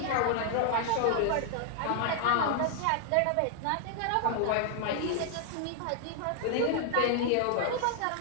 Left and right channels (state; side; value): different; both; correlation 0.00